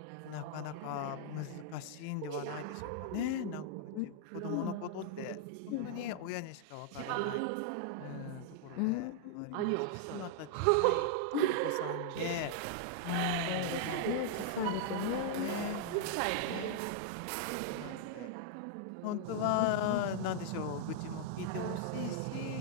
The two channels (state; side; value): different; both; correlation -0.01